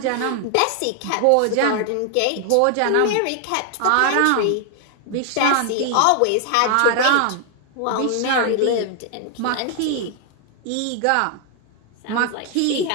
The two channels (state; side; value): different; both; correlation 0.00